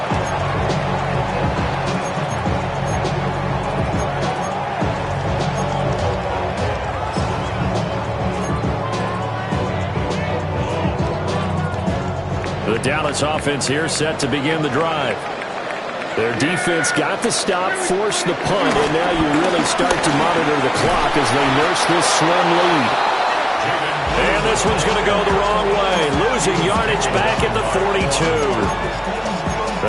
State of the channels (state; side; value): identical; both; correlation 1.00